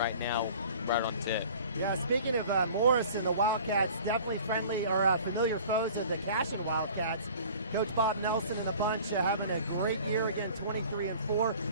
now, right on tip. Yeah, speaking of Morrison, the Wildcats definitely friendly or familiar foes of the Cashion Wildcats. Coach Bob Nelson and the bunch having a great year again, 23-4.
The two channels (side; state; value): both; inverted; correlation -0.46